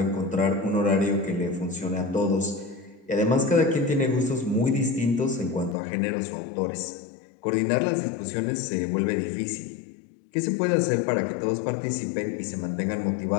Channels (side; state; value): right; drops out; at 5.8 s